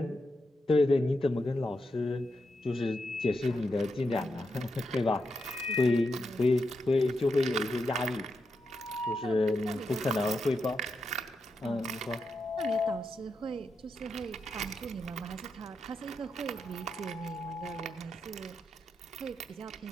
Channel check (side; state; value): both; normal; correlation 0.85